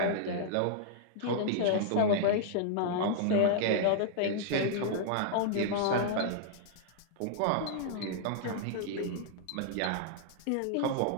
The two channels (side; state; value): both; different; correlation -0.01